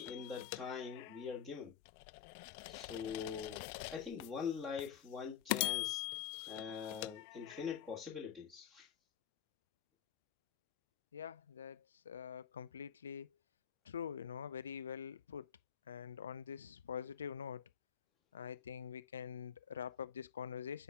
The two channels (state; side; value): quieter; right; 8.9 dB